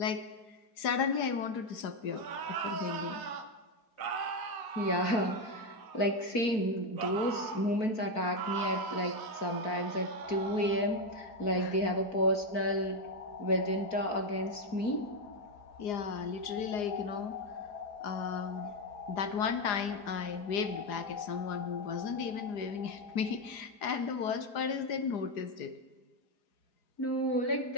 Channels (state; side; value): late; right; 4.9 ms